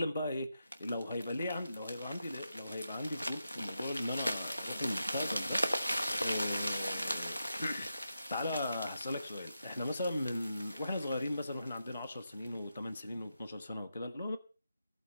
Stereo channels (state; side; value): inverted; both; correlation -0.87